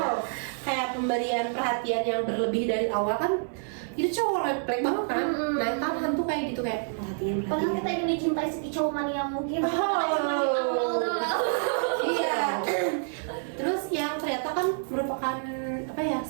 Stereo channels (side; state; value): left; silent; 60 dB below the other